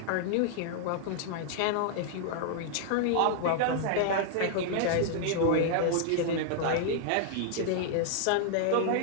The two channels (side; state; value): both; different; correlation -0.01